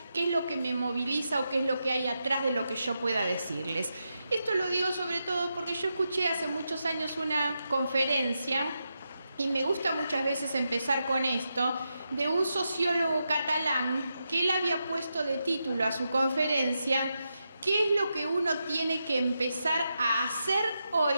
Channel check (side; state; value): both; inverted; correlation -0.86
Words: qué es lo que me moviliza o qué es lo que hay atrás de lo que yo pueda decirles. Esto lo digo sobre todo porque yo escuché hace muchos años una conferencia, y me gusta muchas veces empezar con esto, de un sociólogo catalán que él había puesto de título a su conferencia: ¿qué es lo que uno tiene que empezar a hacer